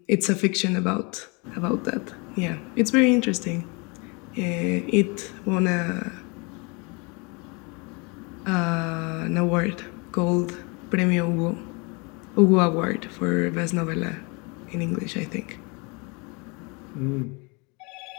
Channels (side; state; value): right; quieter; 30.1 dB